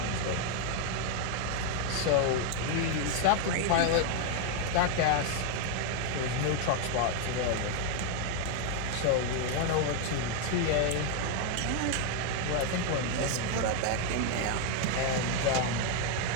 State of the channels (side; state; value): both; different; correlation 0.00